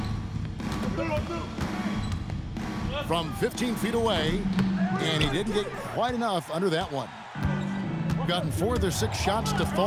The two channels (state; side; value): identical; both; correlation 1.00